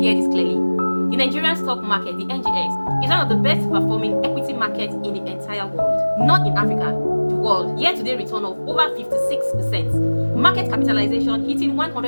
hear this clearly. The Nigerian stock market, the NGX, is one of the best performing equity markets in the entire world. Not in Africa, the world. Year-to-date return of over 56%. Market capitalization hitting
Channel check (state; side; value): inverted; both; correlation -1.00